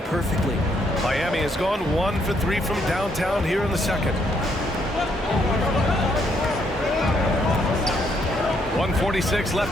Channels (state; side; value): normal; both; correlation 0.72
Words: perfectly. Miami has gone 1 for 3 from downtown here in the second. 1:46 left